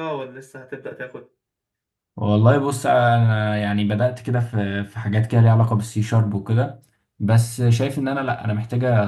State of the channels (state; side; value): identical; both; correlation 1.00